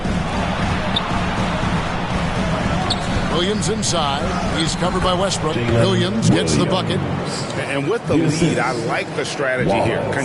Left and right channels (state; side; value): identical; both; correlation 1.00